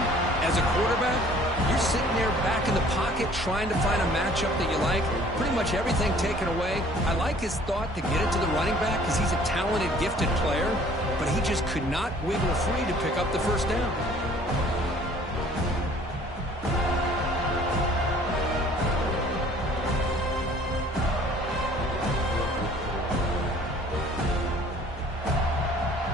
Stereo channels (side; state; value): both; normal; correlation 0.54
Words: As a quarterback, you're sitting there back in the pocket trying to find a matchup that you like. Pretty much everything taken away. I like his thought to get it to the running back because he's a talented, gifted player, but he just could not wiggle free to pick up the first down.